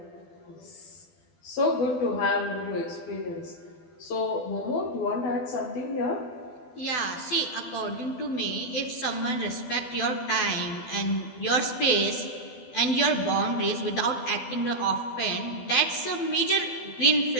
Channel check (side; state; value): right; late; 12 ms